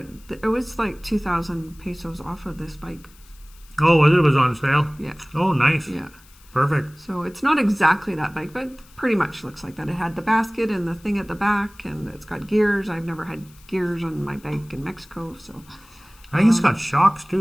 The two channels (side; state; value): left; noise; hiss, 26 dB below the sound